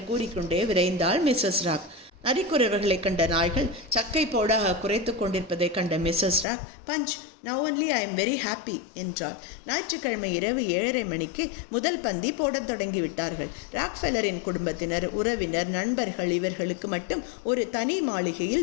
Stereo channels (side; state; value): right; drops out; at 6.5 s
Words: கூறிக்கொண்டே விரைந்தாள் மிஸ்ஸஸ் ராக். நரிக்குறவர்களை கண்ட நாய்கள் சக்கை போடாக குறைத்து கொண்டிருப்பதை கண்ட Mrs Rock, Punch, now only I am very happy என்றாள். ஞாயிற்றுக்கிழமை இரவு 7:30 மணிக்கு முதல் பந்தி போடத் தொடங்கிவிட்டார்கள். ராக்ஃபெல்லரின் குடும்பத்தினர், உறவினர், நண்பர்கள் இவர்களுக்கு மட்டும் ஒரு தனி